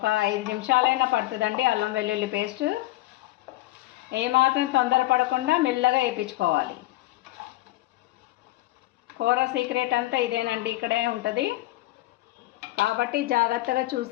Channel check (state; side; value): quieter; right; 18.0 dB